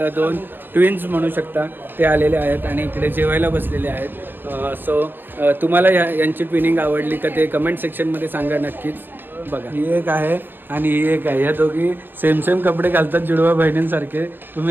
दोन ट्विन्स म्हणू शकता, ते आलेले आहेत आणि इकडे जेवायला बसलेले आहेत. सो तुम्हाला यांची ट्विनिंग आवडली का ते कमेंट सेक्शनमध्ये सांगा नक्कीच. बघा ही एक आहे आणि ही एक आहे, या दोघी सेम सेम कपडे घालतात जुडवा बहिणींसारखे.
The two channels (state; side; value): late; left; 0.094 ms